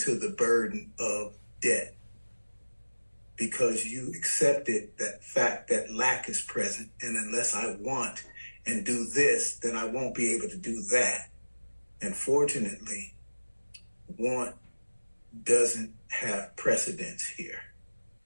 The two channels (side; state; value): both; inverted; correlation -1.00